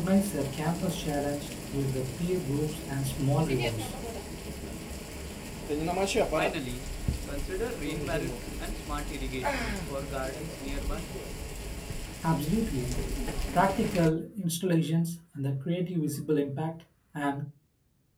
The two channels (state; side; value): identical; both; correlation 1.00